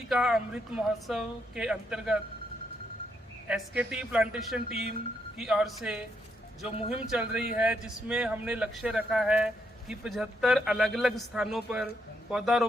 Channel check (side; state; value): both; normal; correlation 0.77